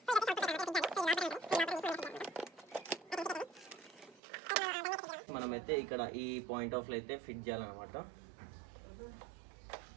మనమైతే ఇక్కడ ఈ పాయింట్ ఆఫ్ లో అయితే ఫిట్ చేయాలన్నమాట.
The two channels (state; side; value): drops out; left; at 4.2 s